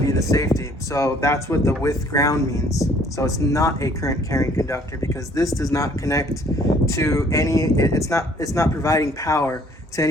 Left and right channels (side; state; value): both; normal; correlation 0.59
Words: be the safety. So that's what the with ground means. So it's not a current carrying conductor because this does not connect to any. It's not providing power to